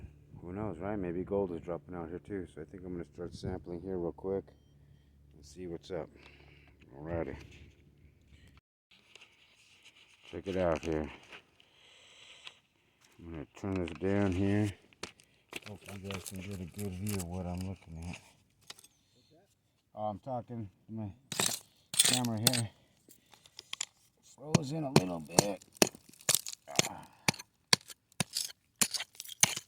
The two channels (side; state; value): both; identical; correlation 1.00